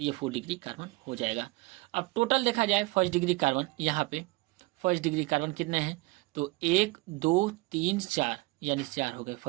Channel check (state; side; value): quieter; left; 23.5 dB